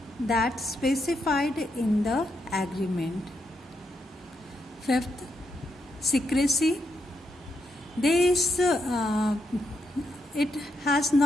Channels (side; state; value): both; normal; correlation 0.81